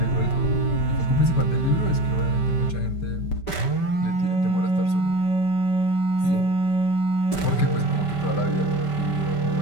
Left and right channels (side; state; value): right; late; 5.1 ms